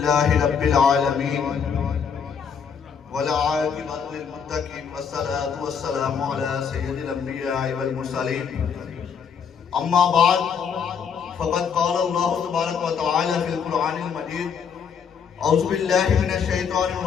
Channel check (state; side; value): quieter; right; 6.8 dB